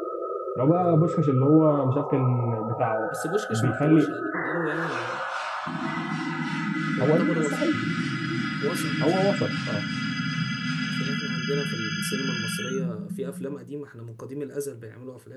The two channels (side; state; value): both; identical; correlation 1.00